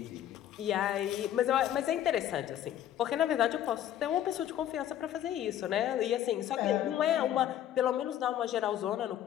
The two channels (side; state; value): right; quieter; 11.4 dB